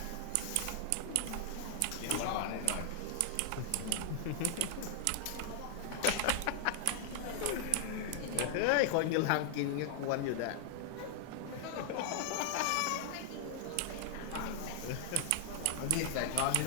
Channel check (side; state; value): both; different; correlation 0.00